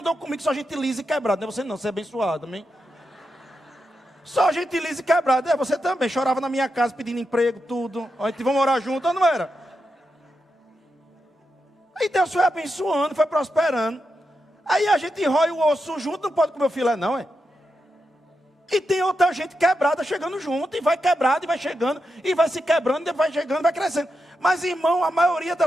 comigo, só gente lisa e quebrada. Não é você não, você é abençoado, amém? Só gente lisa e quebrada. Você também, chorava na minha casa pedindo emprego, tudo. A gente vai morar junto, não era? Aí Deus foi abençoando, foi prosperando. Aí a gente rói o osso junto, não pode comer o filé não, é? E tem outra gente quebrada chegando junto, e vai quebrado, e vai chegando, e vai se quebrando, e vai chegando, vai crescendo. Mas, irmão, a maioria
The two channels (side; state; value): both; normal; correlation 0.87